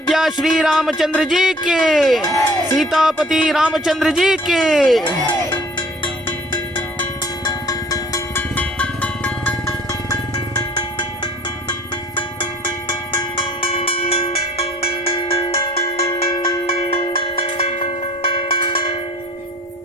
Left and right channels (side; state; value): both; normal; correlation 0.52